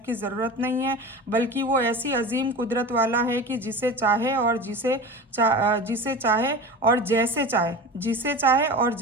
की ज़रूरत नहीं है, बल्कि वो ऐसी अजीम कुदरत वाला है कि जिसे चाहे और जिसे चाहे और जैसे चाहे जिसे चाहे और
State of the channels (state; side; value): normal; both; correlation 0.32